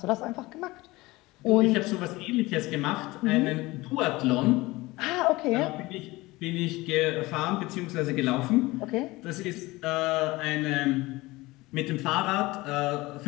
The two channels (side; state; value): right; quieter; 20.7 dB